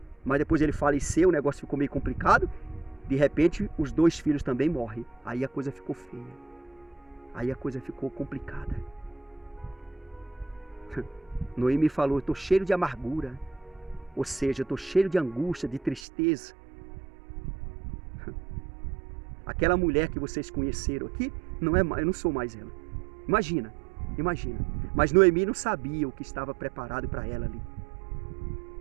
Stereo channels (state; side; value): drops out; left; at 16.0 s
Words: mas depois ele faleceu, o negócio ficou meio complicado. De repente, os 2 filhos também morrem. Aí a coisa ficou feia. Aí a coisa ficou complicada. Noemi falou, eu estou cheio de amargura. Ou seja, eu estou cheio de angústia, de tristeza. Aquela mulher que vocês conheceram aqui, eu não sou mais ela. Imagina. Mas Noemi não sabia o que estava preparado para ela ali.